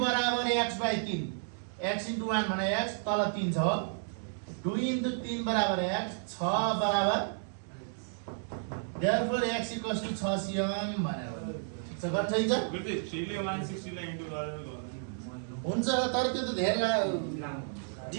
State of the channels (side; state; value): left; silent; digital silence